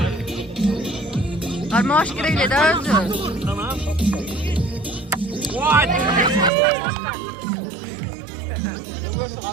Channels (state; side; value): drops out; left; at 6.5 s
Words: Arma hoş gireyle daha özü. Tamam.